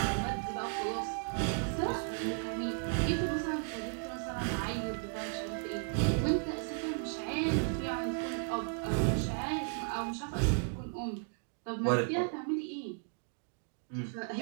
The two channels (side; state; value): left; silent; 54 dB below the other